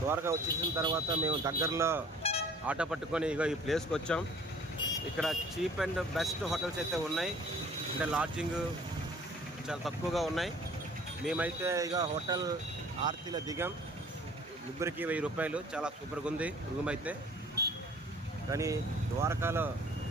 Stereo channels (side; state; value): both; normal; correlation 0.52